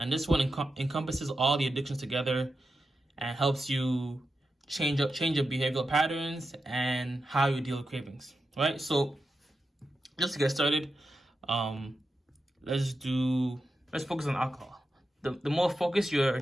this one encompasses all the addictions together and helps you change your behavioral patterns and how you deal with cravings, right? So just to get started, let's focus on alcohol. The more focused your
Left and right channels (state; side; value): normal; both; correlation 0.89